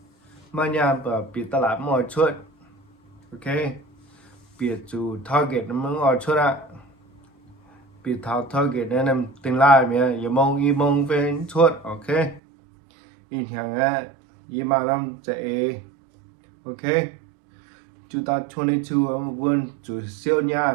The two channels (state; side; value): drops out; left; at 12.4 s